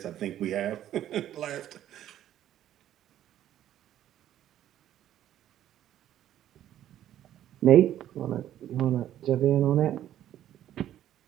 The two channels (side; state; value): left; quieter; 11.9 dB